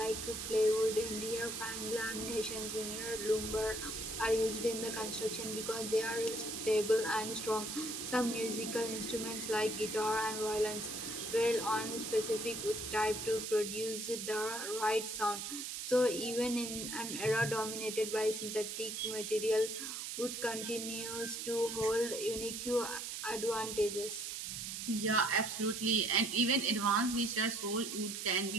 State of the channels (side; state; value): right; noise; hiss, 5 dB below the sound